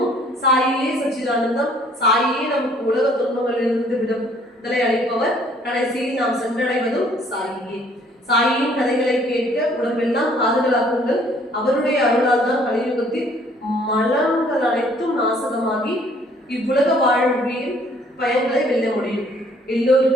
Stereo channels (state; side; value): normal; both; correlation 0.60